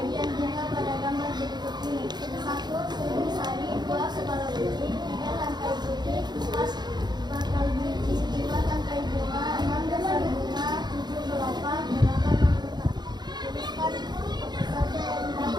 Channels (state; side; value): late; left; 0.21 ms